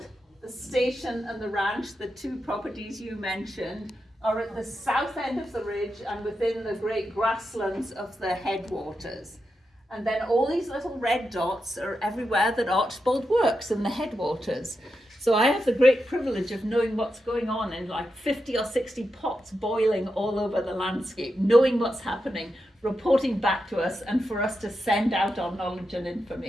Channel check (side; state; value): both; normal; correlation 0.87